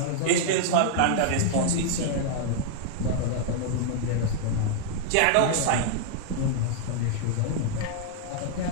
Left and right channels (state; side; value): different; both; correlation -0.01